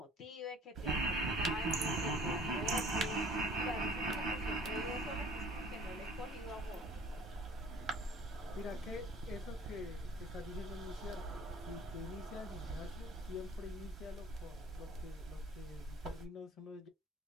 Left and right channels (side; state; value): both; normal; correlation 0.50